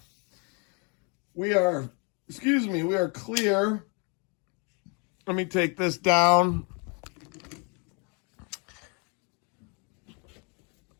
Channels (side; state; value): right; quieter; 34.7 dB